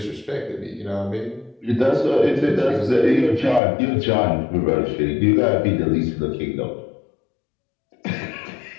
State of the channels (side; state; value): right; drops out; at 3.6 s